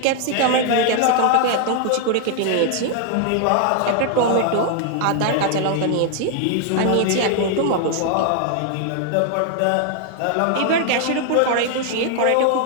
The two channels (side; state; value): both; different; correlation 0.00